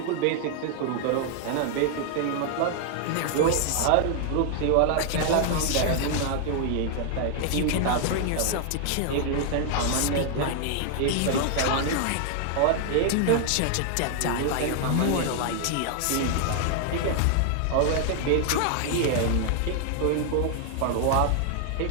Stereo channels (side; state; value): both; different; correlation 0.00